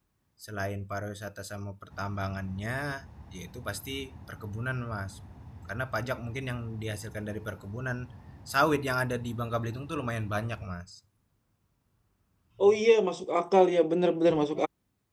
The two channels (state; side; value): identical; both; correlation 1.00